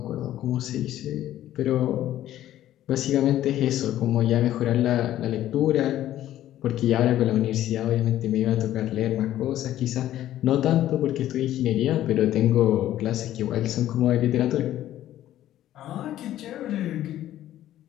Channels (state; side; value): quieter; right; 13.0 dB